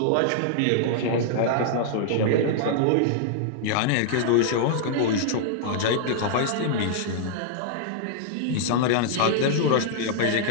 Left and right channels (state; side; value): different; both; correlation -0.01